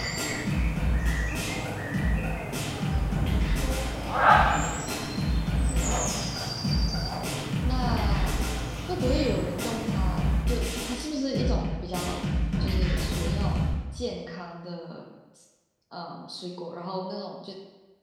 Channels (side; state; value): both; identical; correlation 1.00